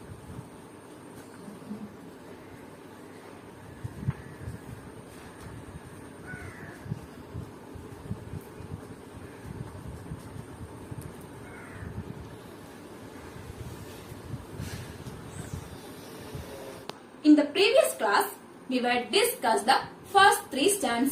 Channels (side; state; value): both; identical; correlation 1.00